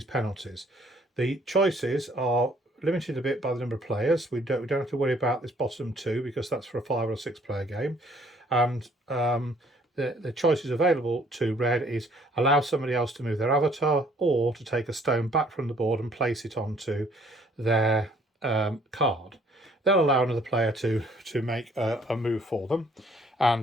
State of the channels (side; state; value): both; normal; correlation 0.61